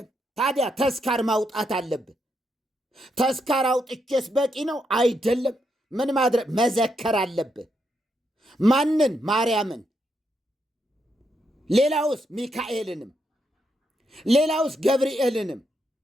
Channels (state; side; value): normal; both; correlation 0.80